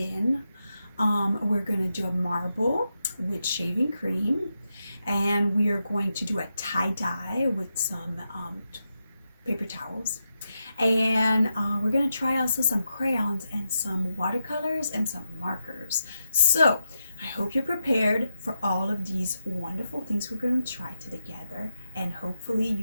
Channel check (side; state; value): both; inverted; correlation -0.85